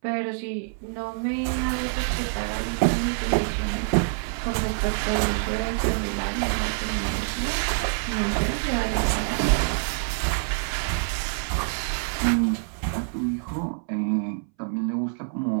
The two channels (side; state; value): left; silent; 60 dB below the other